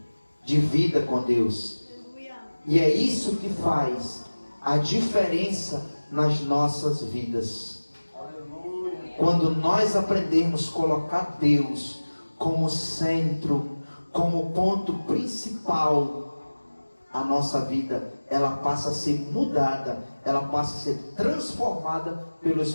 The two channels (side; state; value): both; inverted; correlation -1.00